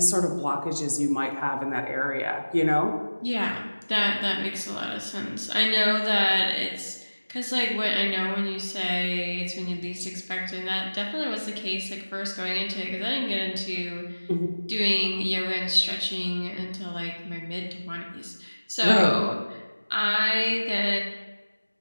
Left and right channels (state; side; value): inverted; both; correlation -1.00